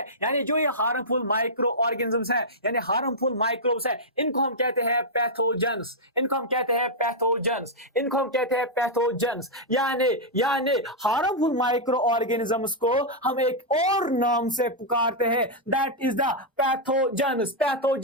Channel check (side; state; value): both; normal; correlation -0.06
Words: यानी जो ये हार्मफुल माइक्रो ऑर्गेनिजम्स हैं यानी हार्मफुल माइक्रोब्स हैं, इनको हम कहते हैं पैथोजेंस, इनको हम कहते हैं पैथोजेंस, इनको हम कहते हैं पैथोजेंस। यानी हार्मफुल माइक्रो ऑर्गेनिजम्स को हम एक और नाम से पुकारते हैं, that is the pathogens.